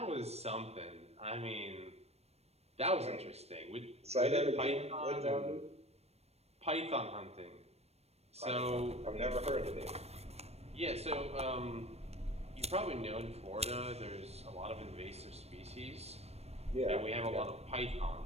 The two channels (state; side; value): late; left; 0.31 ms